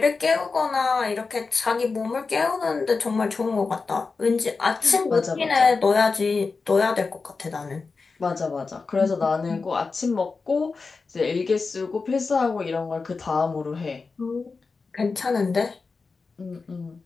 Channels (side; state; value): right; quieter; 4.4 dB